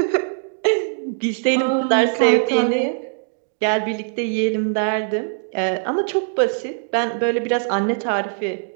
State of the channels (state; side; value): silent; left; digital silence